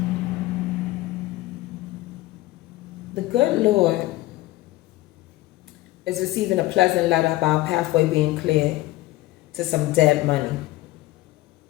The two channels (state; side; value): quieter; right; 17.6 dB